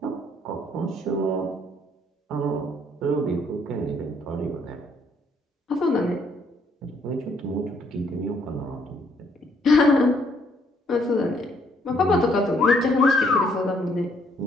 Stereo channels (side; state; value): both; normal; correlation 0.68